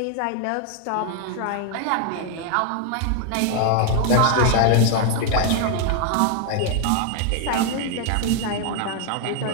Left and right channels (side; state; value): both; different; correlation 0.00